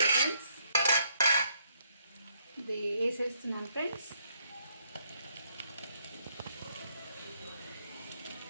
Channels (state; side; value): inverted; both; correlation -0.71